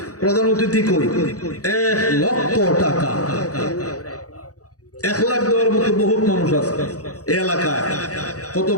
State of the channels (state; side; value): late; right; 0.67 ms